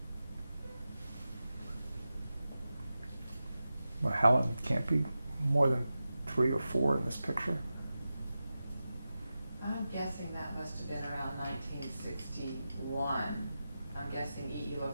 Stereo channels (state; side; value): inverted; both; correlation -0.93